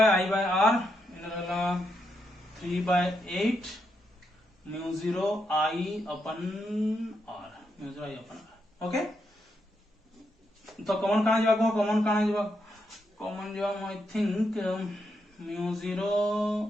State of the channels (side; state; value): both; normal; correlation 0.81